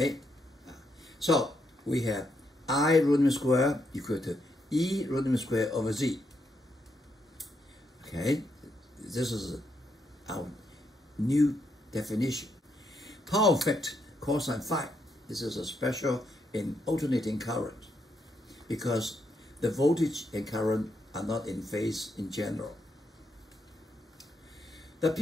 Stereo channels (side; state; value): both; normal; correlation 0.79